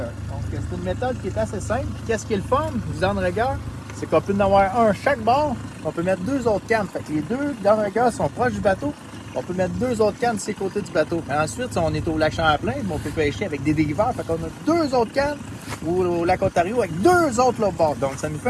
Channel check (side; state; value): both; identical; correlation 1.00